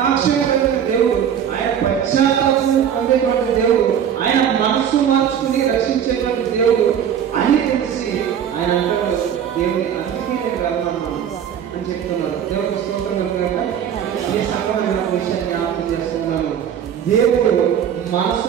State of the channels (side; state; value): left; quieter; 8.8 dB